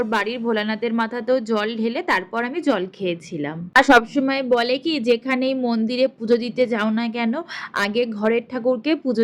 বাড়ির ভোলানাথের মাথাতেও জল ঢেলে তারপর আমি জল খেয়েছিলাম। আর সবসময় বলে কি, যেখানেই মন্দিরে পুজো দিতে যাও না কেন, আগে ঘরের ঠাকুরকে পুজো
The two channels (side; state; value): both; identical; correlation 1.00